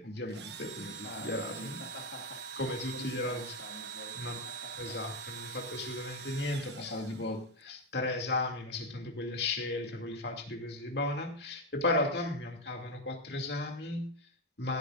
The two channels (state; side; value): normal; both; correlation 0.09